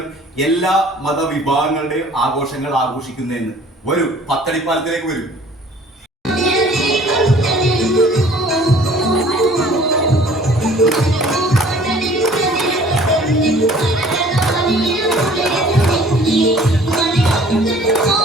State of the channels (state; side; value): normal; both; correlation 0.52